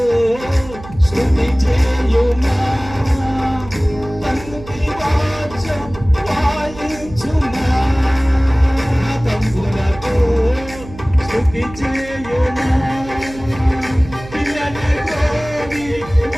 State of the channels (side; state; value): right; noise; hum, 15 dB below the sound